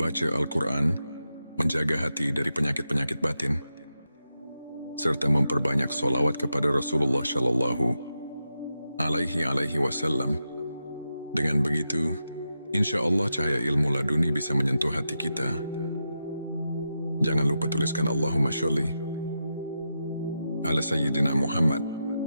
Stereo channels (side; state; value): both; inverted; correlation -0.88